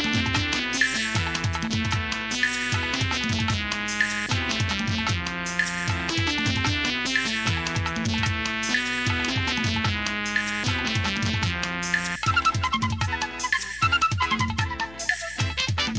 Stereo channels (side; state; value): left; noise; hum, 18 dB below the sound